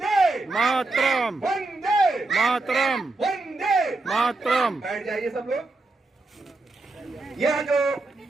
मातरम, वंदे मातरम, वंदे मातरम। बैठ जाइए सब लोग। यह जो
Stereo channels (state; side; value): quieter; left; 3.2 dB